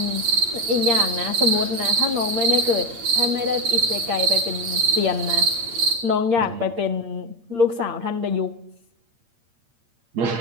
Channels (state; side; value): late; left; 8.7 ms